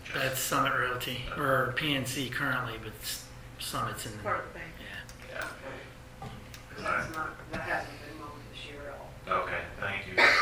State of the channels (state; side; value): identical; both; correlation 1.00